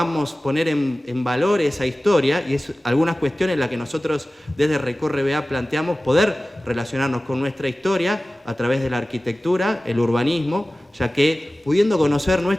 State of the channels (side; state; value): both; normal; correlation 0.97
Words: poner en valor esa historia y algunas cuestiones en las que nosotros desde Recorre BA planteamos poder relacionarnos con nuestra historia a través de la arquitectura, el urbanismo, ya que pudiendo conocer